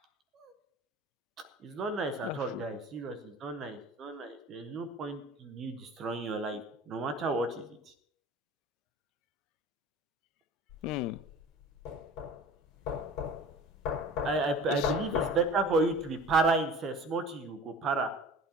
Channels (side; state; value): both; normal; correlation 0.41